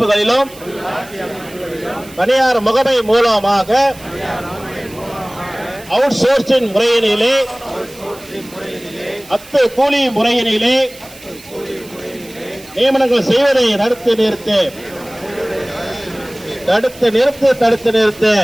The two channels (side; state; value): right; noise; hiss, 20 dB below the sound